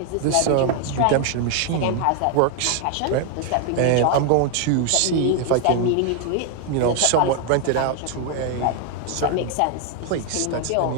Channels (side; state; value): both; different; correlation 0.00